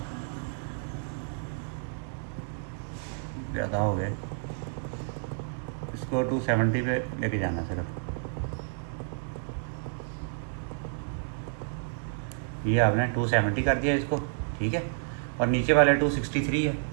ज़्यादा हो गए। इसको 270 पे लेके जाना सिर्फ। ये आपने 270 कर दिया इसको, ठीक है। और नीचे वाले 263 है,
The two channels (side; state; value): left; silent; digital silence